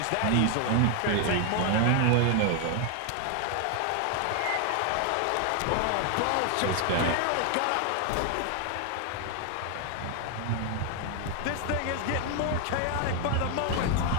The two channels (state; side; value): different; both; correlation 0.00